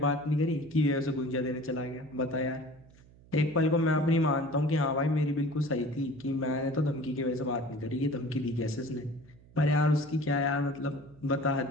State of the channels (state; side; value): noise; right; hum, 25 dB below the sound